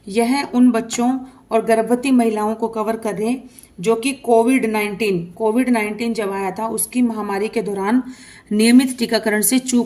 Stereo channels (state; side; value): identical; both; correlation 1.00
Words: यह उन बच्चों और गर्भवती महिलाओं को कवर करे जो कि कोविड-19 जब आया था उसकी महामारी के दौरान नियमित टीकाकरण से